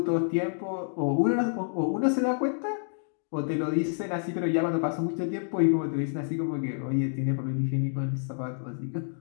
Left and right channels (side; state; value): right; silent; digital silence